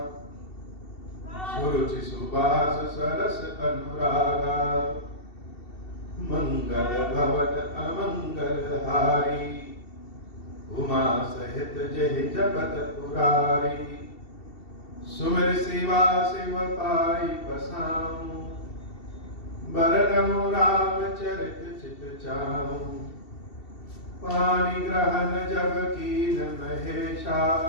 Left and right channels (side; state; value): right; late; 2.7 ms